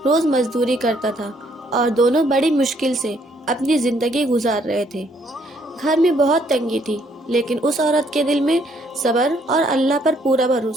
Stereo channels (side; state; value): both; normal; correlation 0.68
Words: روز مزدوری کرتا تھا اور دونوں بڑی مشکل سے اپنی زندگی گزار رہے تھے۔ گھر میں بہت تنگی تھی، لیکن اس عورت کے دل میں صبر اور اللہ پر پورا